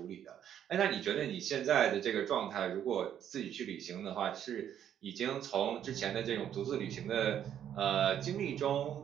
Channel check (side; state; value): left; quieter; 9.9 dB